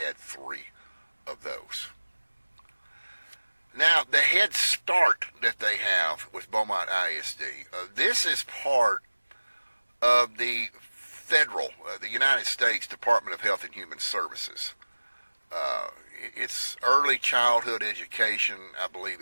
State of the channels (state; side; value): inverted; both; correlation -1.00